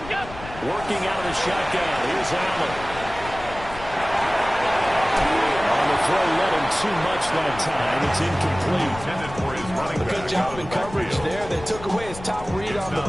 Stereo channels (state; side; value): noise; left; rumble, 14 dB below the sound